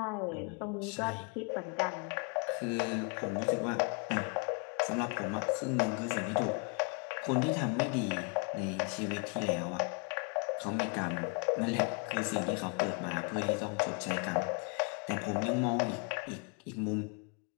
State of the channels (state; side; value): quieter; right; 34.8 dB